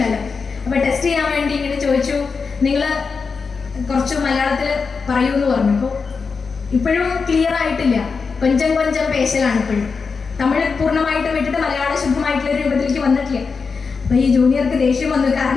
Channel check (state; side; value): quieter; right; 5.1 dB